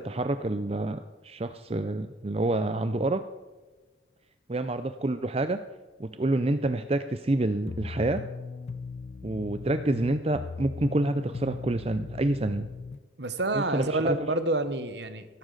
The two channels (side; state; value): both; normal; correlation 0.60